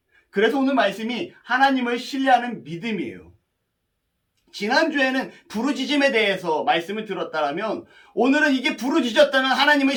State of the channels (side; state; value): both; identical; correlation 1.00